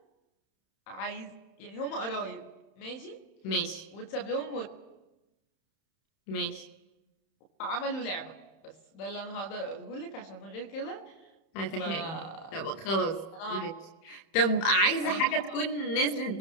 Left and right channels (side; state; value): right; late; 31 ms